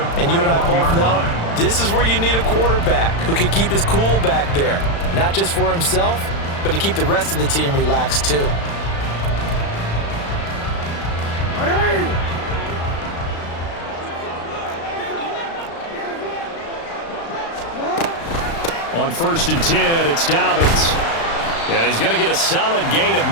And you and I both know this is where you need a quarterback who can keep his cool back there, not just for himself, but to keep the rest of the team relaxed too. On 1st and 10, it's Dobbins. And he's going to get a solid gain of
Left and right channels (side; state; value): right; late; 35 ms